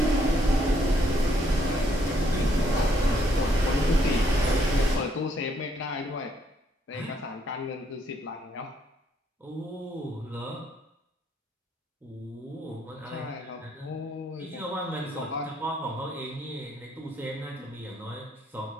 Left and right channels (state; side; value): normal; both; correlation 0.71